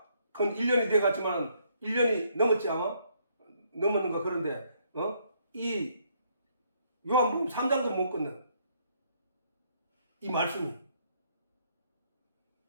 건 1년이 돼 갔지만 1년이 넘었지 아마? 넘었는가. 그런데 이 요한복음 3장도 못 끊는 이 말씀이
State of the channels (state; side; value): inverted; both; correlation -0.69